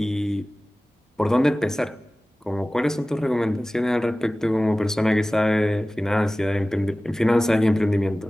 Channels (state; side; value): normal; both; correlation 0.97